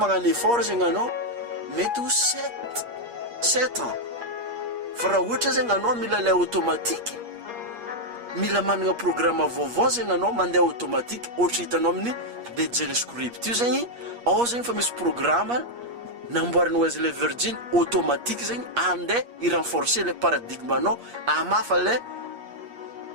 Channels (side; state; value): left; late; 8.4 ms